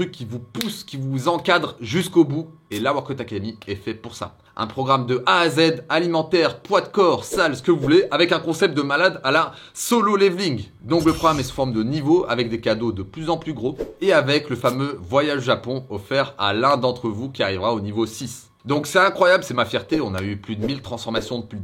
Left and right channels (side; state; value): both; identical; correlation 1.00